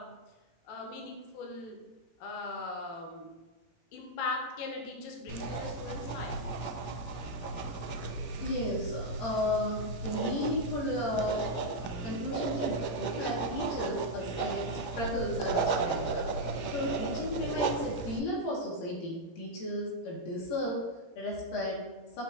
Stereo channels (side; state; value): right; late; 17 ms